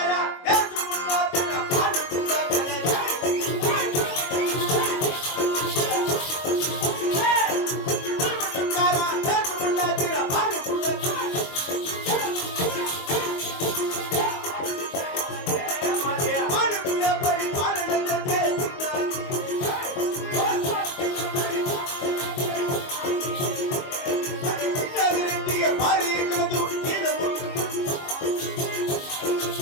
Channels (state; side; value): late; right; 22 ms